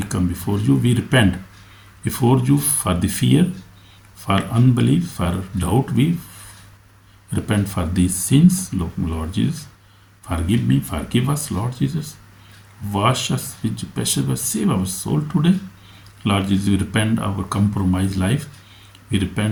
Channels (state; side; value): identical; both; correlation 1.00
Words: come before you. We repent before you for the fear, for unbelief, for doubt. We repent for these sins, Lord Jesus. Forgive me, forgive us, Lord Jesus. Wash us with your precious blood. Save our soul today. Lord Jesus, we repent our compromised life. We